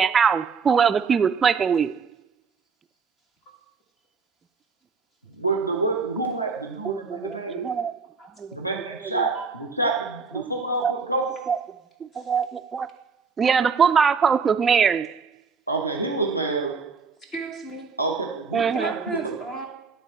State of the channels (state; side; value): quieter; left; 5.3 dB